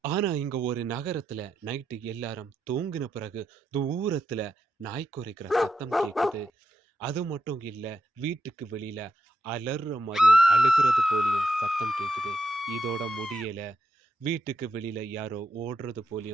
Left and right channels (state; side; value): normal; both; correlation 0.84